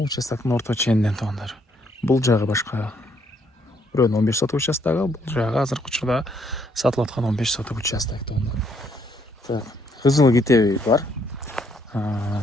участоктун орто ченинен туугандар. Бул жагы башка бирөөнүн 15 соток участогу, бул жагы азыркы учурда сатылып аткан 15 соток участок туугандар. Так, кызыл китеби бар.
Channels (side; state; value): both; normal; correlation 0.70